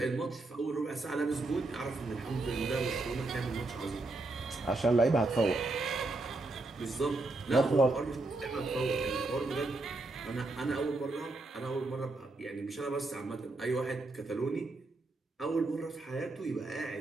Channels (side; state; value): left; quieter; 3.1 dB